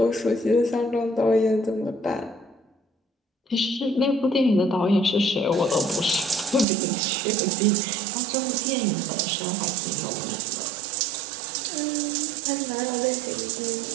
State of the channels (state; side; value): drops out; left; at 6.7 s